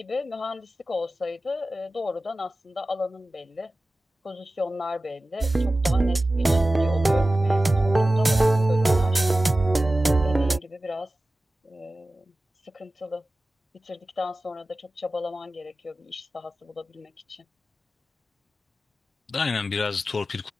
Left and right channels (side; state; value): both; normal; correlation 0.95